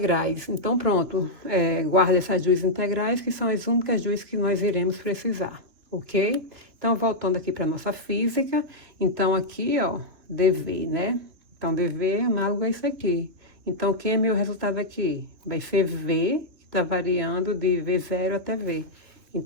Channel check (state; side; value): late; left; 3.0 ms